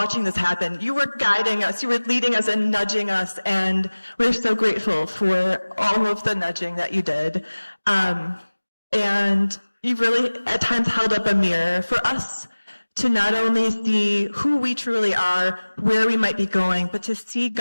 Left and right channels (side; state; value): both; inverted; correlation -1.00